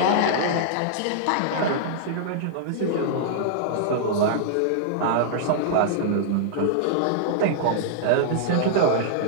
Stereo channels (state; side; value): different; both; correlation -0.02